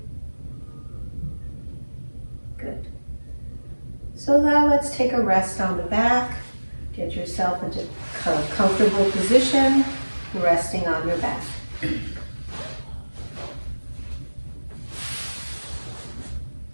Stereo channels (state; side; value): inverted; both; correlation -1.00